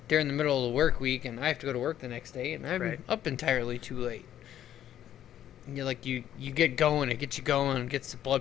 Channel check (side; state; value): right; quieter; 11.2 dB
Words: during the middle of the work week, and I have to go to work the next day, and I'm Right. up entirely too late. And you're like, you get going, it gets you going, gets the